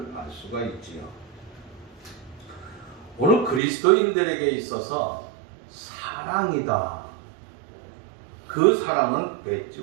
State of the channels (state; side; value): drops out; left; at 3.6 s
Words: 알 수가 있지요. 오늘 그리스도인들에게 있어서 사랑이다. 그 사랑은